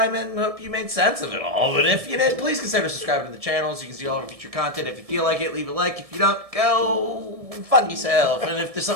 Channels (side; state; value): left; late; 1.7 ms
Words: and hope you made sense of it all. But if you did, please consider subscribing to the channel so you can see all of our future content. If you feel like it, leave a like. If you don't, go fuck yourself. And if there's